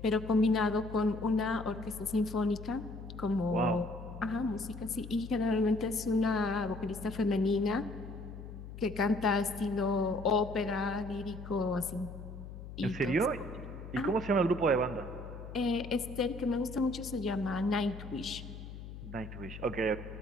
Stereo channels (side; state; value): left; noise; hum, 12 dB below the sound